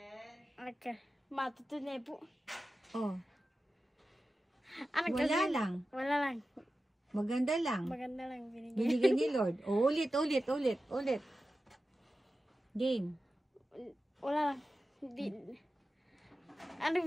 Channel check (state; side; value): normal; both; correlation 0.93